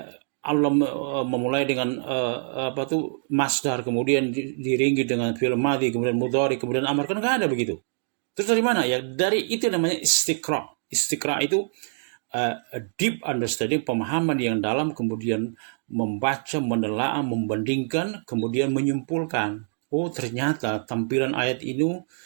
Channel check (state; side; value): silent; left; digital silence